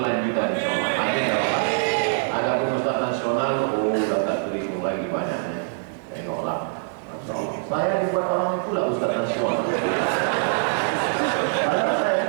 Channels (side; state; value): left; silent; digital silence